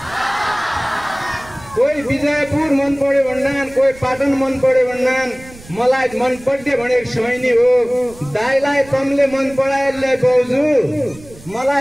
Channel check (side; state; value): right; noise; rumble, 21 dB below the sound